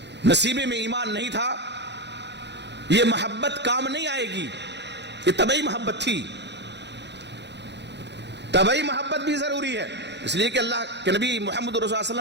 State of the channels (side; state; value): left; late; 0.50 ms